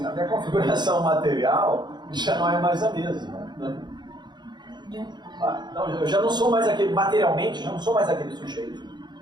a minha configuração material já não é mais a mesma. Né? Então, eu já não sou mais aquele, materialmente, já não sou mais aquele sujeito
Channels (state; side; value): late; left; 0.21 ms